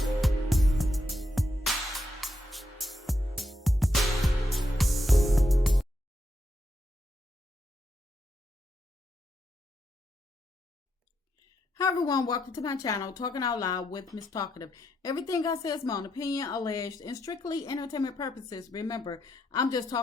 Hi everyone, welcome to my channel, Talking Out Loud with Miss Talkative. Everything I say is my own opinion, alleged, and strictly entertainment purposes. Remember, I'm just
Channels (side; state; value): both; normal; correlation 0.81